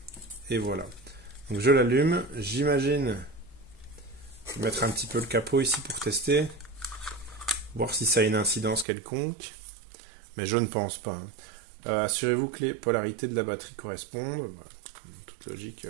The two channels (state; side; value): drops out; left; at 8.8 s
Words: Et voilà. Donc je l'allume. J'imagine mettre un petit peu le capot ici pour tester, voir si ça a une incidence quelconque. Mais je ne pense pas. Assurez-vous que les polarités de la batterie correspondent. Voilà. Toute